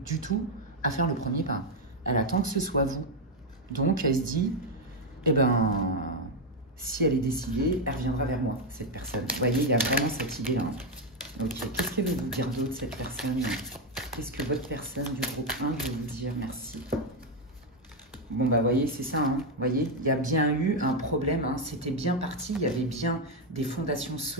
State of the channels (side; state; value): both; normal; correlation 0.05